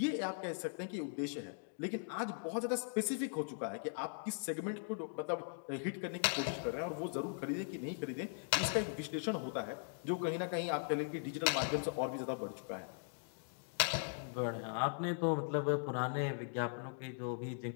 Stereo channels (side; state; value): right; silent; digital silence